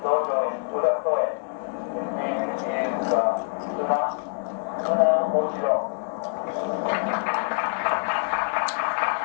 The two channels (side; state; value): right; silent; 61 dB below the other